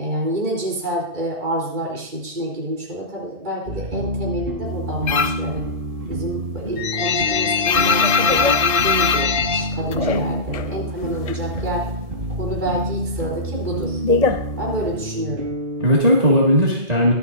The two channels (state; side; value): late; left; 1.7 ms